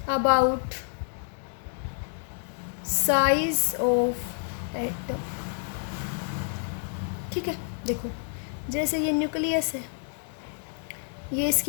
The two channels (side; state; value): right; silent; 59 dB below the other